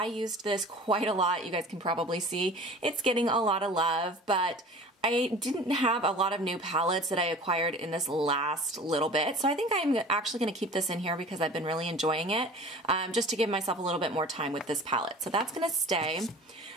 used this quite a lot. You guys can probably see it's getting a lot of love, but I didn't have a lot of new palettes that I acquired in this last little bit. So I think I'm actually going to keep this in here because I've been really enjoying it, just to give myself a little bit more time with this palette. So that's going to stay.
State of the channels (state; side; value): normal; both; correlation 0.42